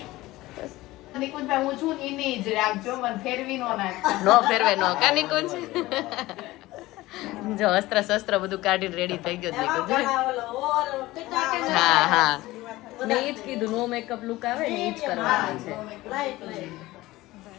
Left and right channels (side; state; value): right; quieter; 18.4 dB